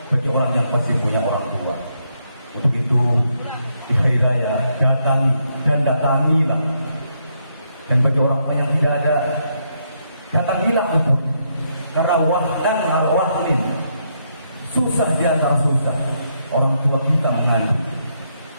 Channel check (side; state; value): both; inverted; correlation -0.77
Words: bagi orang yang masih punya orang tua. Untuk itu di hari raya datang dan datangilah. Dan bagi orang yang tidak ada, datangilah untuk, karena wahdan al-wahdin, susah di antara susah orang tua kita mengandung.